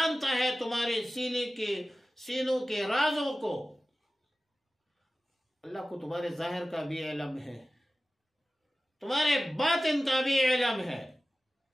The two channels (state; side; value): normal; both; correlation 0.95